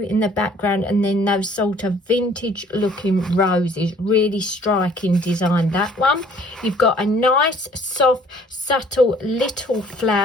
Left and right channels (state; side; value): normal; both; correlation 0.56